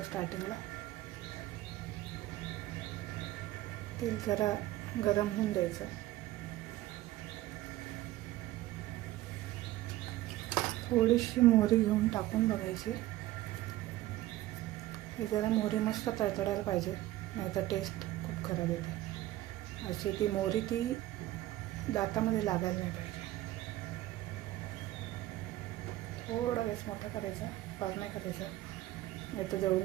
स्टार्टिंगला. तेल जरा गरम होऊन द्यायचं. थोडीशी मोहरी घेऊन टाकून बघायची. हे जरा मोहरी मस्त तळतळायला पाहिजे, नाहीतर टेस्ट खूप खराब येते. अशी ती मोहरी ती दातामध्ये लागायला नाही पाहिजे. थोडा गॅस मोठा करायचा, फार नाही करायचा, नाही तर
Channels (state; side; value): quieter; left; 15.8 dB